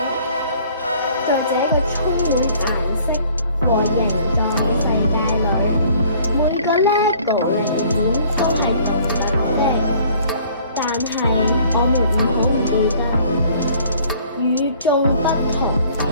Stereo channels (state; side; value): inverted; both; correlation -0.56